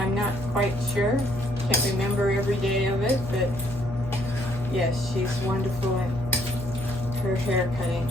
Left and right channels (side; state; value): both; normal; correlation 0.67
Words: not quite sure. Can't remember every day of it, but yes, she's wonderful at her hair cutting.